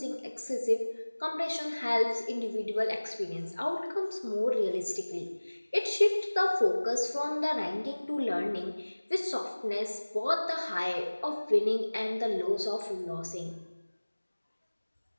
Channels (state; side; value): inverted; both; correlation -1.00